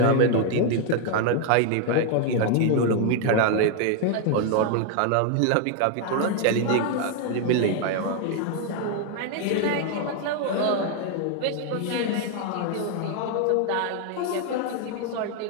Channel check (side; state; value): both; different; correlation 0.00